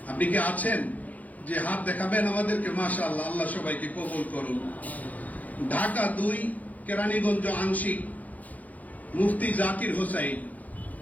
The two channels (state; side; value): late; right; 0.077 ms